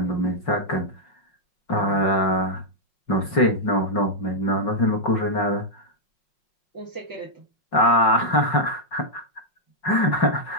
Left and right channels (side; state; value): right; late; 5.5 ms